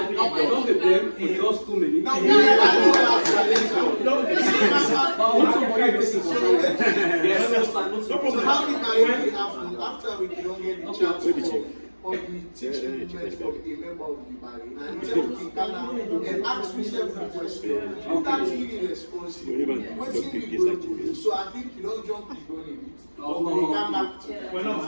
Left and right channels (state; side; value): inverted; both; correlation -1.00